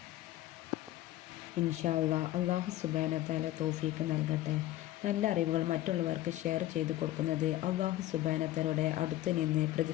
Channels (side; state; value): right; quieter; 14.8 dB